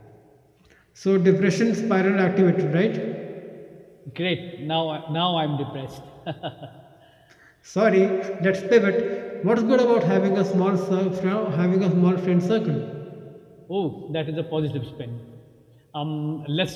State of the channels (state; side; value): identical; both; correlation 1.00